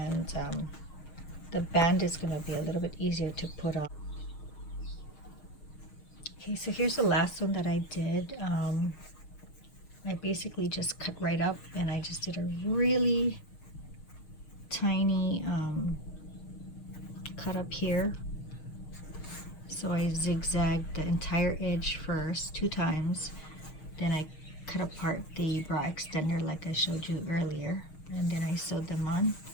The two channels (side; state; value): right; late; 6.5 ms